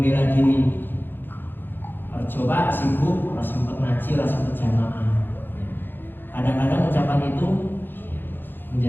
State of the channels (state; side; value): late; right; 0.096 ms